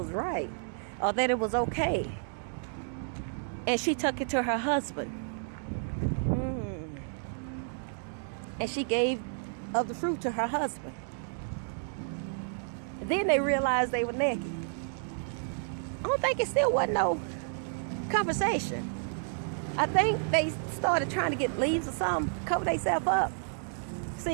right, or that it was okay. And she took it to her husband. And she gave of the fruit to her husband. And then they realized they were naked. I don't think it still wasn't no conversation. I think they started trying to get leaves or something, cover themselves up.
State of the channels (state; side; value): silent; left; digital silence